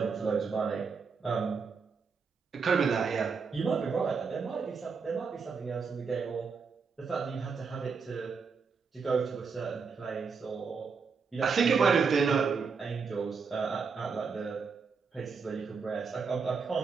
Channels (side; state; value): left; quieter; 5.4 dB